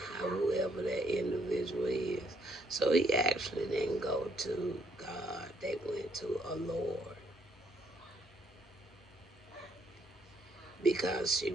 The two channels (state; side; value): normal; both; correlation 0.70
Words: whoever that individual is. So he actually didn't go to God. They went to a Lord because she